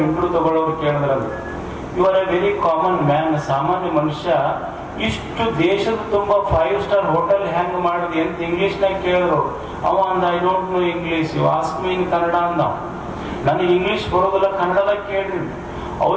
ಇಂಟರ್ವ್ಯೂ ತಗೊಳ್ಳೋರು ಕೇಳಿದ್ರಂತ, you are a very common man, ಸಾಮಾನ್ಯ ಮನುಷ್ಯ, ಇಷ್ಟು ದೇಶದ ತುಂಬಾ 5 ಸ್ಟಾರ್ ಹೋಟೆಲ್ ಹೆಂಗ್ ಮಾಡಿದ್ವಿ ಅಂತ ಇಂಗ್ಲಿಷ್ನಾಗ ಕೇಳಿದ್ರು. ಅವ ಅಂದ, I don't know English, you ask me in Kannada ಅಂದ. ನನಗೆ ಇಂಗ್ಲಿಷ್ ಬರೋದಿಲ್ಲ, ಕನ್ನಡದಾಗ ಕೇಳ್ರಿ.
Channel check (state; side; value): identical; both; correlation 1.00